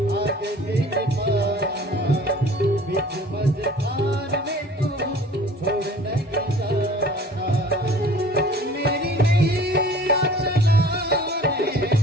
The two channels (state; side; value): normal; both; correlation 0.48